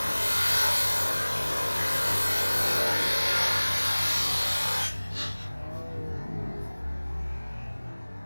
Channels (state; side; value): inverted; both; correlation -1.00